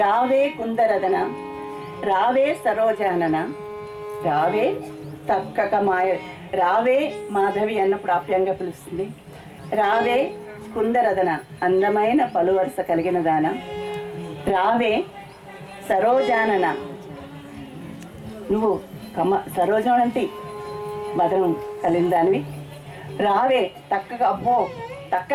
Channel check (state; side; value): identical; both; correlation 1.00